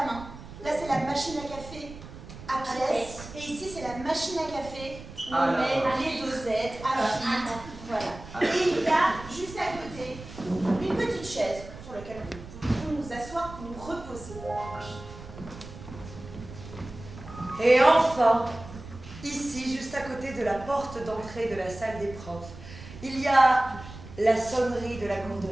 main. la machine à café à pièces. Et ici, c'est la machine à café où Ah on là met là. les dosettes à filtre. Voilà. Et il y a juste à côté une petite chaise sur laquelle nous pouvons nous asseoir pour nous reposer. Et enfin, ici, juste à côté de la porte d'entrée de la salle des profs, il y a la sonnerie de la cour de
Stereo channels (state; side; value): noise; right; rumble, 14 dB below the sound